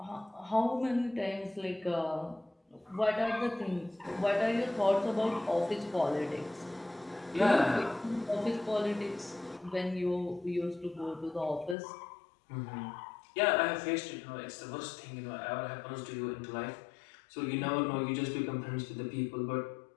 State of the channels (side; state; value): right; drops out; at 11.8 s